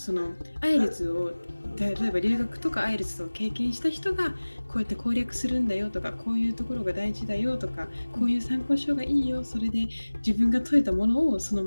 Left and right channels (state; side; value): inverted; both; correlation -1.00